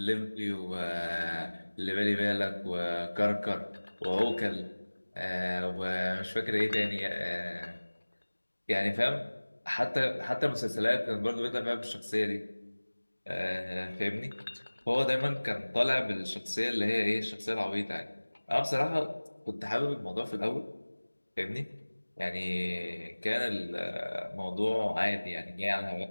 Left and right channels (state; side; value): inverted; both; correlation -1.00